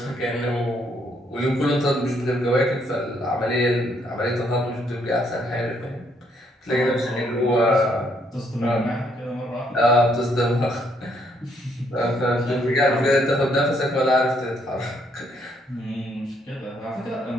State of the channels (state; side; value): normal; both; correlation 0.71